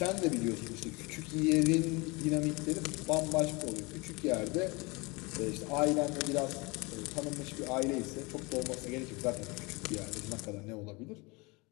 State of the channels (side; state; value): right; quieter; 26.4 dB